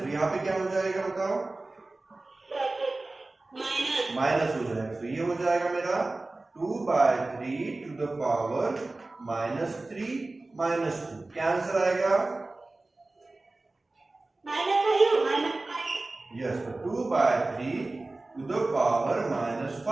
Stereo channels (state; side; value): quieter; left; 3.1 dB